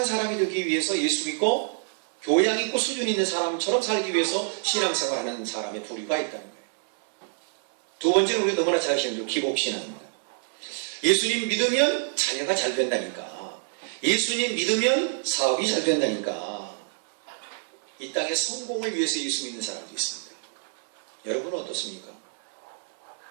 사람이 되기 위해서 예수 믿고 교양 있고 수준 있는 사람처럼 살기 위해서 신앙생활하는 사람의 부류가 있다는 거예요. 두 번째는 우리가 너무나 잘 아시는 기복신앙입니다. 예수님 믿으면 자녀가 잘 된다니까. 예수님 믿으면 사업이 잘 된다니까. 이 땅의 성공을 위해서 예수 믿는 사람도 있습니다. 여러분은 어떻습니까?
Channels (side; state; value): left; silent; 61 dB below the other